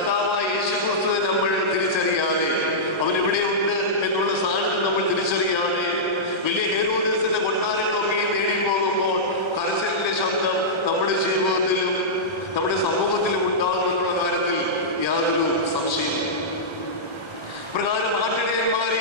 യേശുക്രിസ്തുവിനെ നമ്മൾ തിരിച്ചറിയാതെ, അവൻ എവിടെയുണ്ട് എന്നുള്ള സാന്നിധ്യം നമ്മൾ തിരിച്ചറിയാതെ വലിയ ഹേരോദേസിന്റെ കൊട്ടാരങ്ങളൊക്കെ നേടി പോകുമ്പോൾ കരച്ചിലിന്റെ ശബ്ദം നമ്മുടെ ജീവിതത്തിലും നമ്മുടെ സമൂഹത്തിലും ഉണ്ടാകുമെന്നുള്ള കാര്യത്തിൽ യാതൊരു സംശയമില്ല. പ്രകാരം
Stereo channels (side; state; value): right; late; 1.3 ms